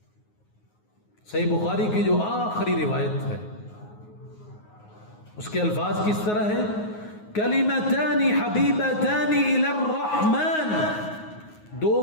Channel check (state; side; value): late; right; 9.5 ms